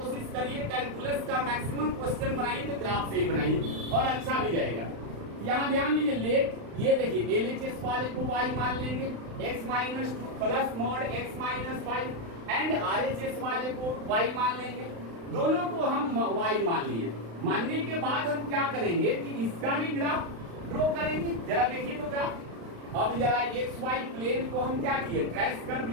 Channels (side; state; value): left; late; 35 ms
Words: करिए, कैलकुलस का मैक्सिमम क्वेश्चन बनाइए तो ग्राफ से ही बनाइए, और अच्छा भी रहेगा। यहाँ ध्यान दीजिए, लेट, ये देखिए LHS वाले को y मान लेंगे, x - 2 plus mod x - 5, and RHS वाले को y मान लेंगे। दोनों को हम y मान लिए। मानने के बाद हम क्या करेंगे कि इसका भी ग्राफ ड्रॉ करेंगे। जरा देखिए तो ग्राफ। अब जरा XY प्लेन को हम क्या किए, ट्रेस कर